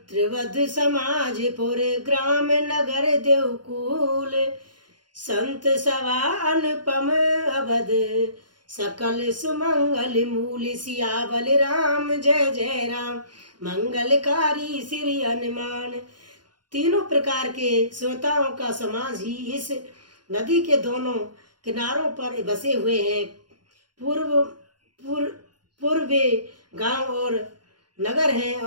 समाज पुर ग्राम नगर देवकुल संत सवा अनुपम अवध सकल सुमंगल मूल सियावल राम जय जय राम मंगलकारी श्री हनुमान। तीनों प्रकार के श्रोताओं का समाज ही इस नदी के दोनों किनारों पर बसे हुए हैं। पूर्वे गांव और नगर हैं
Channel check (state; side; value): late; left; 0.71 ms